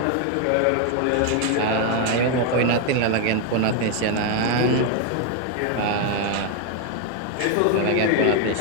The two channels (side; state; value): both; different; correlation 0.01